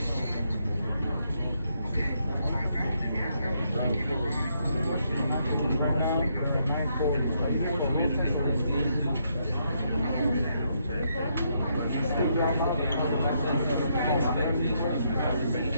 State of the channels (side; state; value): both; inverted; correlation -0.76